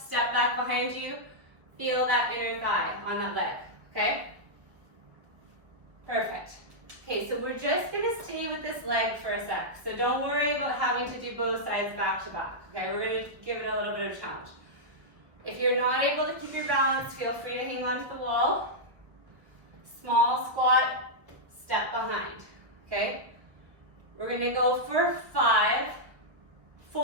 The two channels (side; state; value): left; late; 1.2 ms